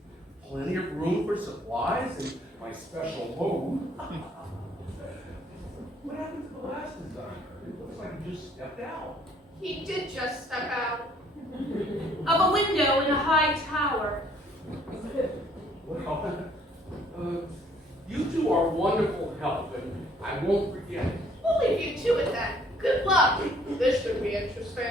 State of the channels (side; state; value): both; normal; correlation 0.62